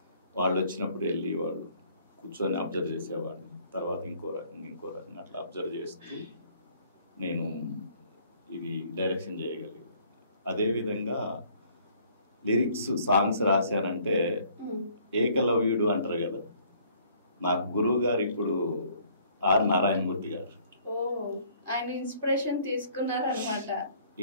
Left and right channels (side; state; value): both; inverted; correlation -0.60